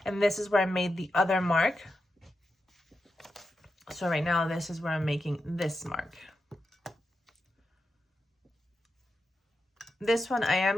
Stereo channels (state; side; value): normal; both; correlation 0.88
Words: And this is where I made the other mark. So right now, this is where I'm making this mark. This one I am